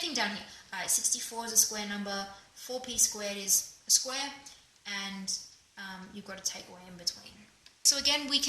down here. 64 is a square number, 4p squared is a square, and you've got a takeaway in between. So again, we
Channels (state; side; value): identical; both; correlation 1.00